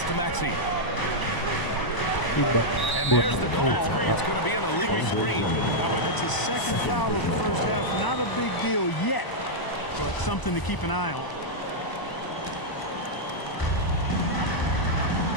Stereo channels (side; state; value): right; late; 1.0 ms